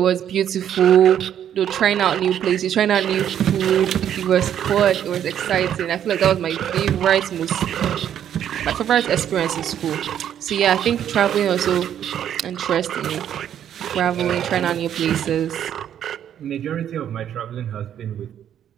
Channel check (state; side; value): quieter; left; 10.0 dB